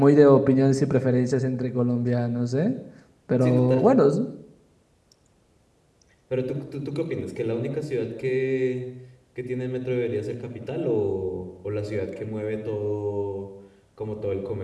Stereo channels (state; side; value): identical; both; correlation 1.00